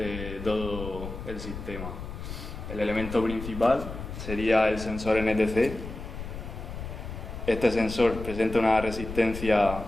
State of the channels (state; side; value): noise; left; rumble, 9 dB below the sound